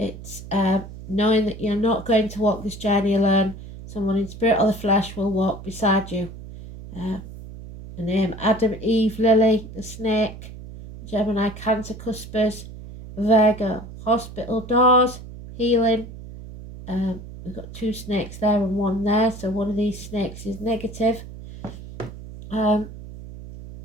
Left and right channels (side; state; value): right; noise; hum, 14 dB below the sound